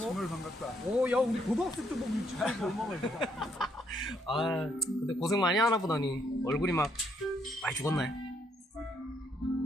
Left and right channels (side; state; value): both; normal; correlation 0.72